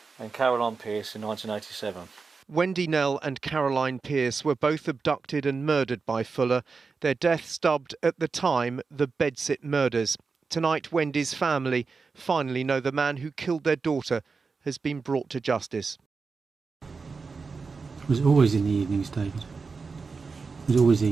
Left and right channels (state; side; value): quieter; left; 4.7 dB